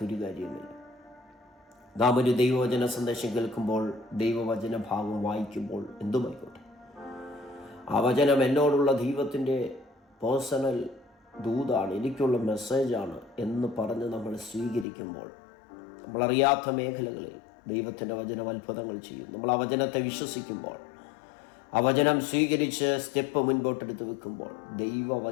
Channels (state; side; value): drops out; right; at 14.9 s